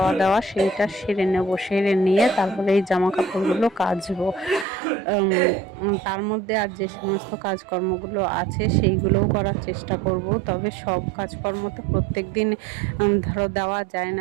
দাওয়া সেইটা সেরে নেব, সেরে নিয়ে তারপরে এই জামা কাপড়গুলো কাচবো। তার মধ্যে আর যে সমস্ত কাজকর্মগুলো আছে সেইগুলোও করার চেষ্টা করব। তবে সব কাজকর্ম তো প্রত্যেক দিন ধরো দেওয়া যায়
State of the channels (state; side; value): drops out; left; at 4.7 s